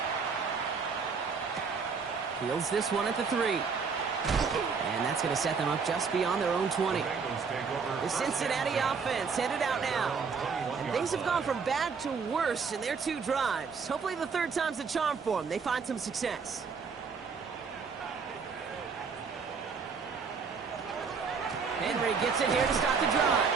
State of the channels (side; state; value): left; quieter; 5.4 dB